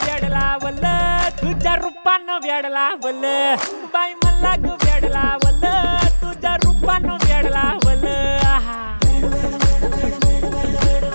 व्याड लावलं तुझ्या रूपानं व्याड लावलं बाई मला ग व्याड लावलं तुझ्या रूपानं व्याड लावलं आहा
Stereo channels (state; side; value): inverted; both; correlation -1.00